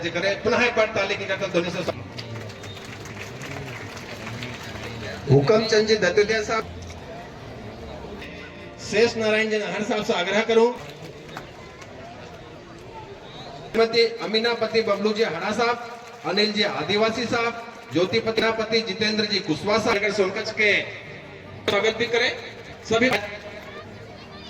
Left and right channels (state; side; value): identical; both; correlation 1.00